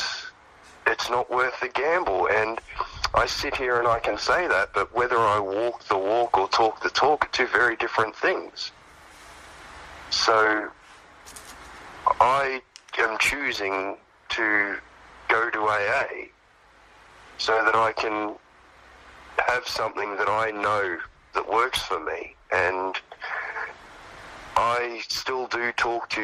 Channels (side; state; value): both; identical; correlation 1.00